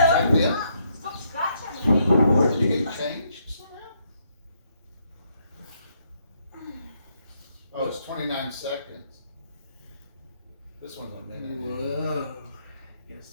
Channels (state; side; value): inverted; both; correlation -0.73